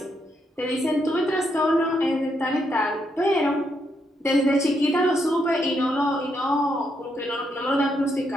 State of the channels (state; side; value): normal; both; correlation 0.78